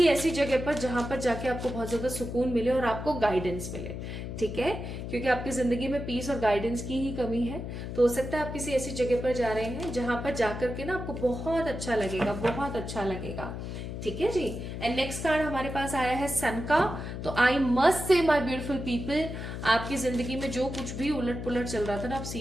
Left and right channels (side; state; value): left; noise; hum, 7 dB below the sound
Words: ऐसी जगह पर जहां पर जाके आपको बहुत ज्यादा सुकून मिले और आपको गाइडेंस मिले, ठीक है, क्योंकि आपकी जिंदगी में पीस और गाइडेंस की ही कमी है। तो हो सकता है आप किसी ऐसी जगह पर जा रहे हैं जहां पर जाकर के ना आपको बहुत अच्छा लगेगा, बहुत अच्छा लगेगा, ठीक है जी। एंड नेक्स्ट कार्ड हमारे पास आया है सन का। तो आई मस्ट से माय ब्यूटीफुल पीपल, आपकी जिंदगी में जो कुछ भी उलट पुलट चल रहा था ना, आप